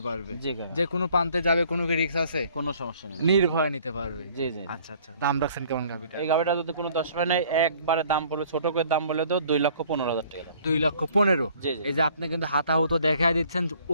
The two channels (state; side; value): inverted; both; correlation -0.56